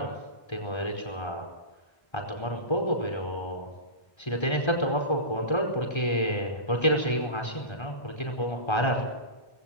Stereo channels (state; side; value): late; right; 1.3 ms